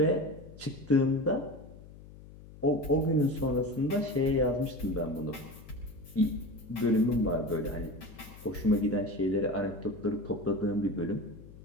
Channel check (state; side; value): noise; left; hum, 18 dB below the sound